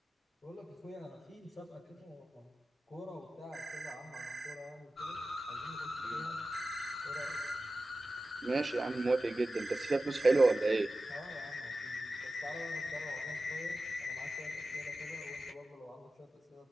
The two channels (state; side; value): normal; both; correlation 0.94